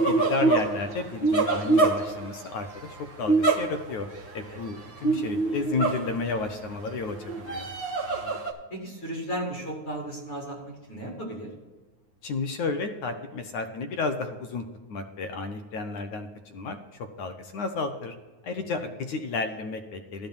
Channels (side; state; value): right; late; 9.5 ms